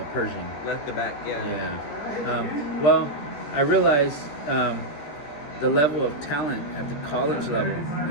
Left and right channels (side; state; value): right; late; 14 ms